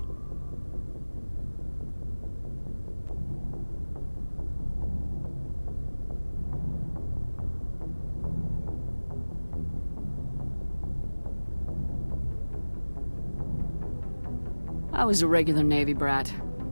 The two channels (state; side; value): inverted; both; correlation -1.00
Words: I was a regular Navy brat.